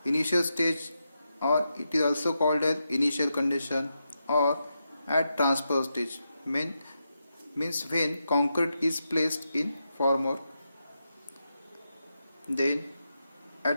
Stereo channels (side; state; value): both; inverted; correlation -0.86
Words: Initial stage, or it is also called as initial condition, or at transfer stage, means when concrete is placed in formwork. Then